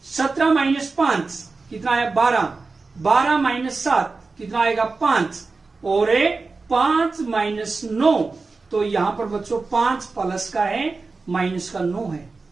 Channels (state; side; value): quieter; left; 4.0 dB